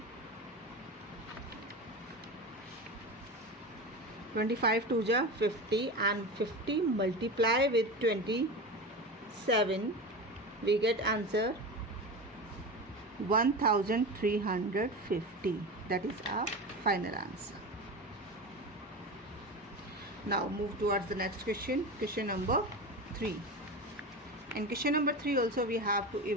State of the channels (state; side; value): normal; both; correlation 0.26